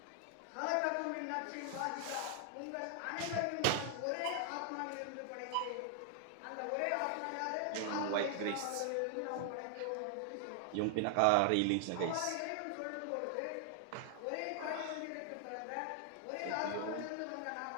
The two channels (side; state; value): both; different; correlation 0.00